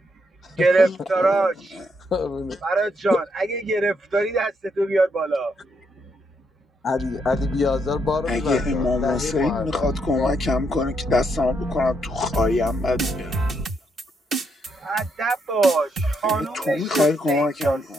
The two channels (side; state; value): both; normal; correlation 0.77